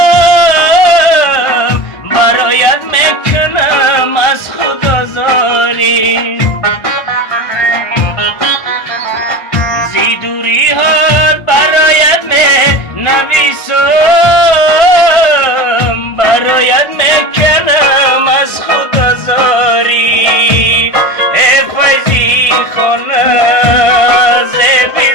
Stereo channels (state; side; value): late; right; 1.6 ms